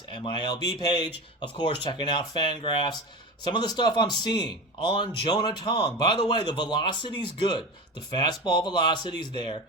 MILB page, of course, checking out Fangraphs. Some of the stuff I'm seeing on Jonah Tong. By the way, the velocity's good. The fastball velocity's there.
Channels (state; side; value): normal; both; correlation 0.26